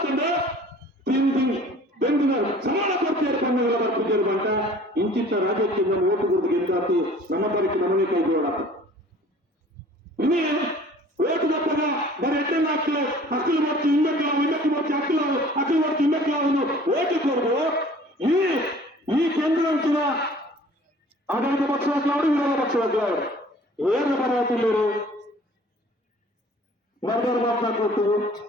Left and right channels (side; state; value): both; normal; correlation 0.49